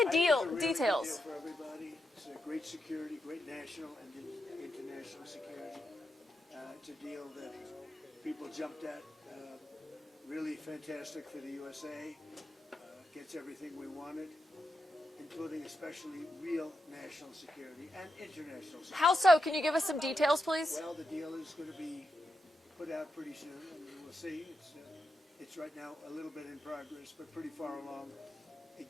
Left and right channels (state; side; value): normal; both; correlation 0.86